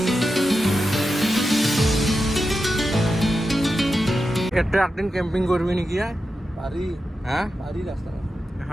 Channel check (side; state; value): both; normal; correlation 0.90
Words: এটা একদিন কেম্পিং কৰবি নাকি পাৰি হ্যাঁ পাৰি ৰাস্তা